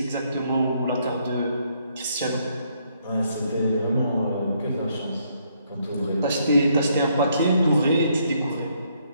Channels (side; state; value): both; inverted; correlation -0.71